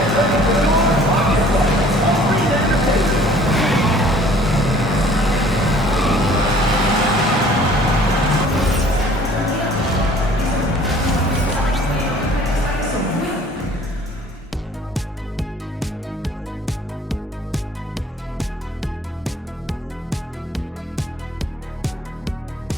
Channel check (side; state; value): both; normal; correlation 0.53